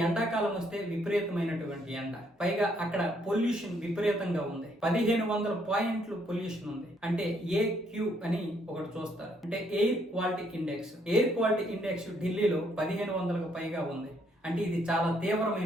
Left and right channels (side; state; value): both; normal; correlation 0.70